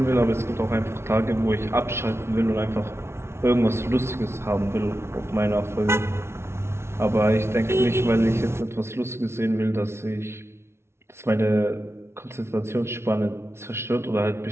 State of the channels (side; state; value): left; late; 0.12 ms